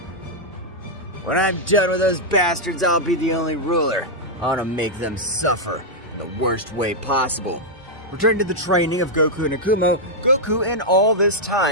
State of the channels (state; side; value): normal; both; correlation -0.04